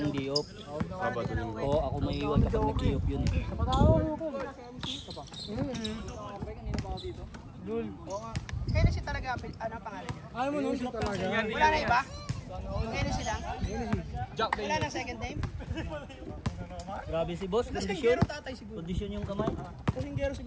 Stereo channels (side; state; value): both; identical; correlation 1.00